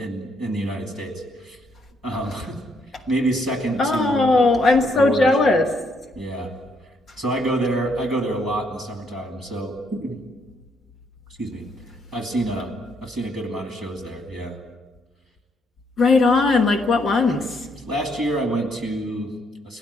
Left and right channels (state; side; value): normal; both; correlation 0.72